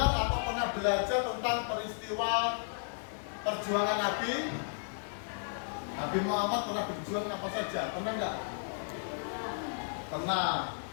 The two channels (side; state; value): right; silent; 55 dB below the other